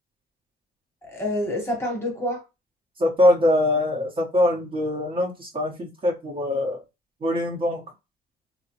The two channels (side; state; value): both; normal; correlation 0.62